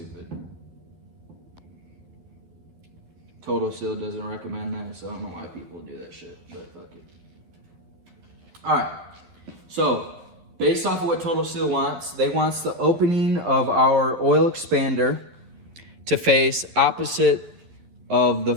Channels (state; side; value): late; left; 12 ms